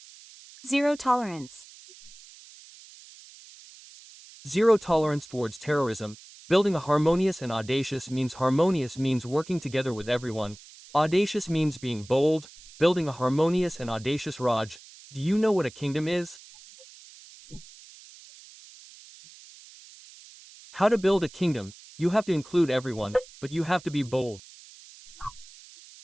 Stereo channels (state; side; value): noise; right; hiss, 21 dB below the sound